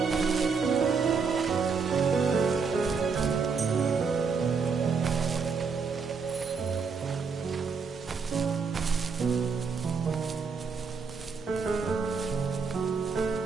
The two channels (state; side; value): quieter; left; 5.3 dB